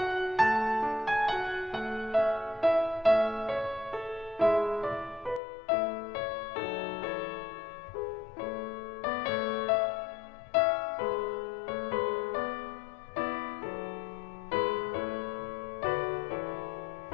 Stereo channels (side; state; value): right; drops out; at 5.4 s